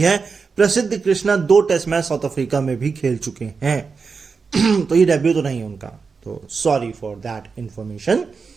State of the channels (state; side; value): quieter; left; 5.0 dB